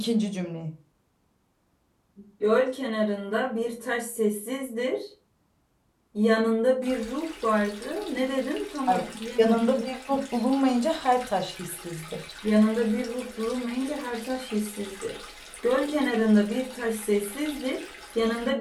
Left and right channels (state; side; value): identical; both; correlation 1.00